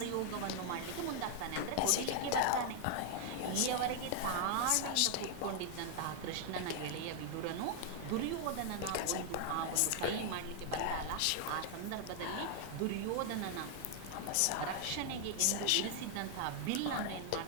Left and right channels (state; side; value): different; both; correlation 0.00